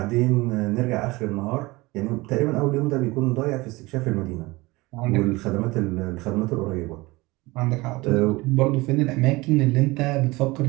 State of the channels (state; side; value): quieter; left; 22.0 dB